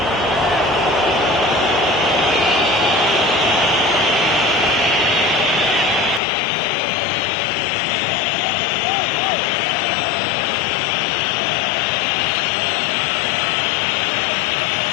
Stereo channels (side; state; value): right; drops out; at 6.2 s